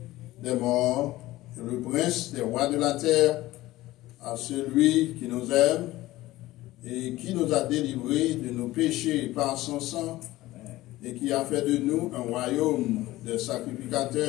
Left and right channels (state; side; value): quieter; right; 17.2 dB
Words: des morts, et le prince des rois de la terre, à celui qui nous aime et qui nous a délivrés de nos péchés par son sang, et qui a fait de nous un royaume de